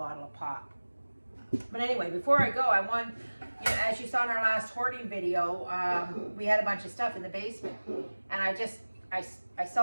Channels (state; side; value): inverted; both; correlation -1.00